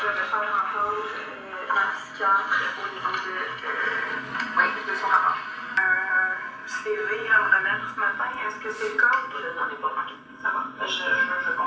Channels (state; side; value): identical; both; correlation 1.00